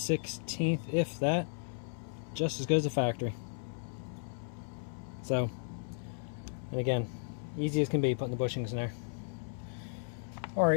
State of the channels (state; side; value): silent; right; 55 dB below the other